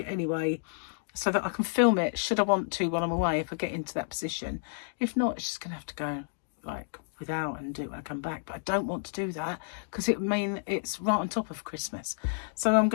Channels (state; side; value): silent; right; digital silence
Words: anyway, so that I can film it should I want to while I'm away, if I get into that position. If not, it's just going to have to go like without and do it when I come back. But I don't want to do that because it would mean it's right on top of Christmas. So I'm